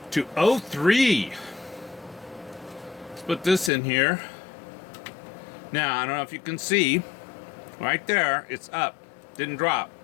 To 03. Let's put this in here. Now, I don't know if you can see, right there, it's up. Didn't drop.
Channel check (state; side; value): drops out; right; at 3.7 s